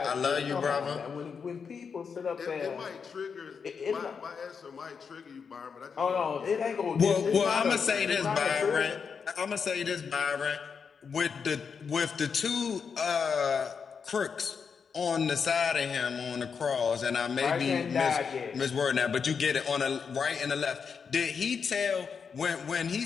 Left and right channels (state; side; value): quieter; right; 6.1 dB